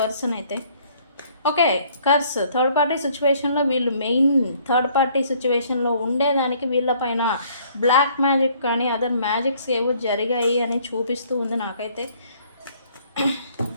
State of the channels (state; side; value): inverted; both; correlation -0.61